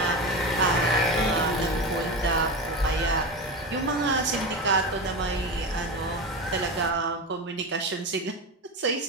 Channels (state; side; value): normal; both; correlation 0.22